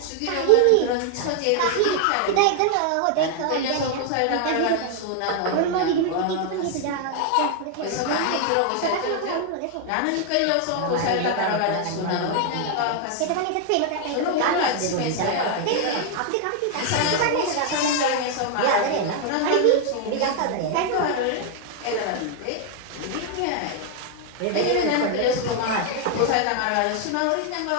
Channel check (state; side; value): different; both; correlation 0.00